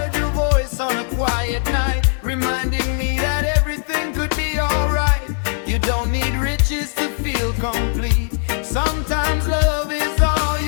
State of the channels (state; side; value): silent; right; 55 dB below the other